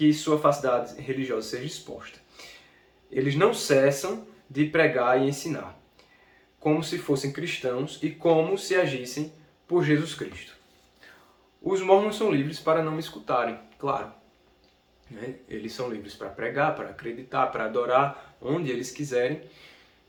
sua falsidade religiosa seja exposta. Eles não cessam de pregar e ensinar, como se fossem cristãos e como se agissem por Jesus Cristo. Os mormons são livres para não me escutarem, claro. Né? Eles são livres para pregar, para acreditar, para adorar, onde eles quiserem.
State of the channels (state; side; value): identical; both; correlation 1.00